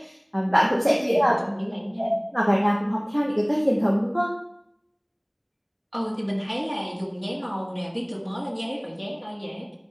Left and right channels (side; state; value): both; identical; correlation 1.00